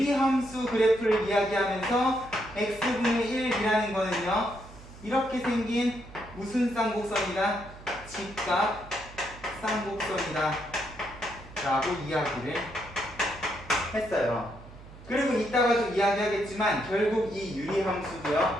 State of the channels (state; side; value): noise; right; hum, 18 dB below the sound